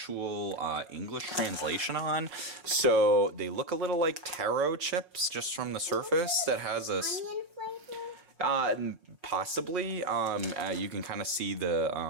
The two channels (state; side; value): late; left; 5.6 ms